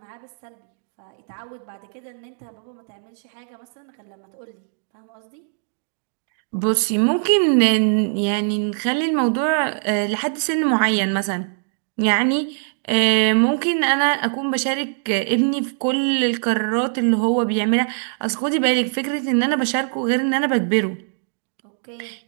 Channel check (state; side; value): silent; left; digital silence